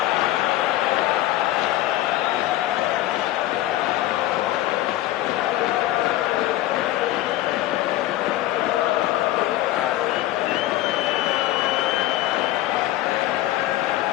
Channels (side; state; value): right; quieter; 15.1 dB